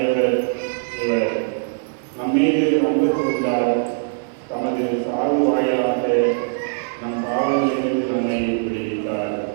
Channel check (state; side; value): silent; left; digital silence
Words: இவர். நம்மீது அன்பு கூர்ந்தார், தமது சாவு வாயிலாக நம் பாவங்களிலிருந்து நம்மை விடுவித்தார்.